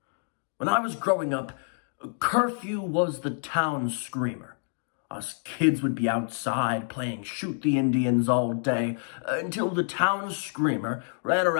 When I was growing up, curfew was the town screamer. Us kids would be outside playing shoot the Indians all day until the town screamer ran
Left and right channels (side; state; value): right; silent; 60 dB below the other